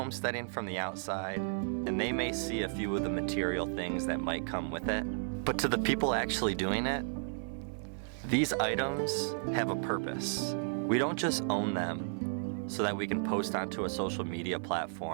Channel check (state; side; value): silent; left; digital silence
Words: from the outside and they may see a few of the material things that might come with it. But to the people actually doing it, these items have a purpose. We don't just own them so that we can post onto a social media